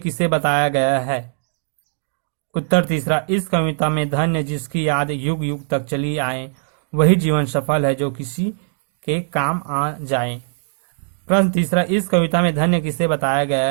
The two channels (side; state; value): left; silent; digital silence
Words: बताया गया है? उत्तर तीसरा, इस कविता में धन्य जिसकी याद युग युग तक चली आए वही जीवन सफल है जो किसी के काम आ जाए। प्रश्न तीसरा, इस कविता में धन्य किसे बताया